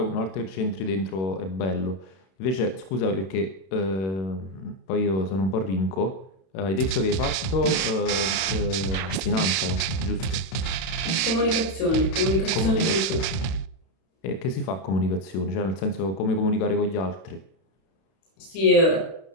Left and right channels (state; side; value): late; right; 31 ms